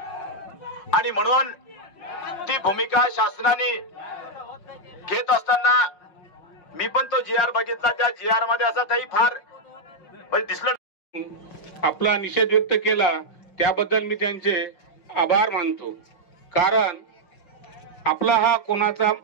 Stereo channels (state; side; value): late; right; 5.6 ms